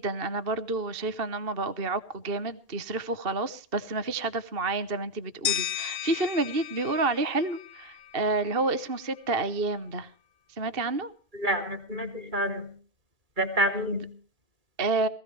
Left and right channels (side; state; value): left; late; 2.3 ms